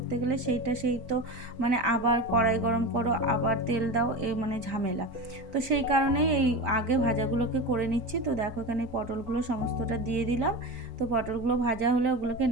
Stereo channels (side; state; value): left; late; 4.3 ms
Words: গেলে সেই তো মানে আবার কড়াই গরম করো, আবার তেল দাও, এই মানে ঝামেলা, তো সেই কারণেই এই আগে ভাজাগুলোকে করে নিচ্ছি। তো দেখো এখানে পটলগুলো সমস্তটা দিয়ে দিলাম, তো পটলগুলো ভাজা হলে ওগুলোকে